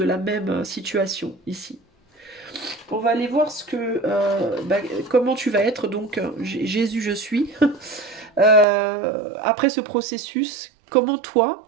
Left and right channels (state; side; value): drops out; left; at 8.7 s